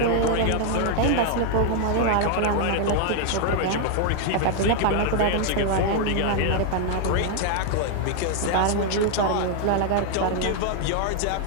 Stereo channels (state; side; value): different; both; correlation 0.00